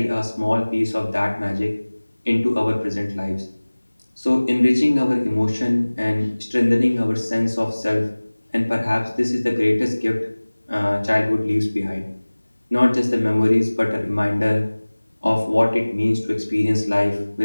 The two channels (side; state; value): both; inverted; correlation -1.00